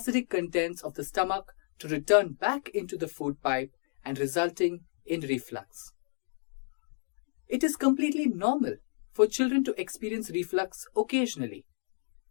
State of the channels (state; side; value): silent; right; digital silence